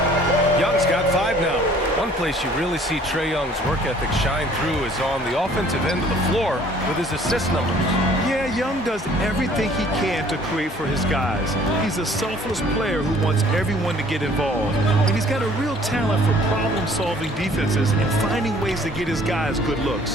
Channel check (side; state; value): both; normal; correlation 0.55